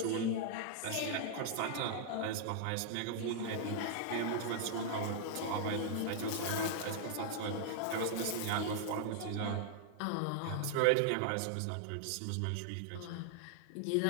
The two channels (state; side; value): different; both; correlation -0.01